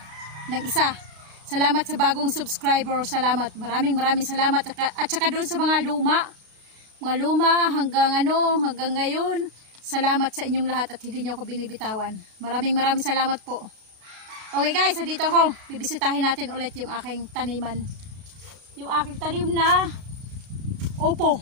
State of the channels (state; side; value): late; left; 32 ms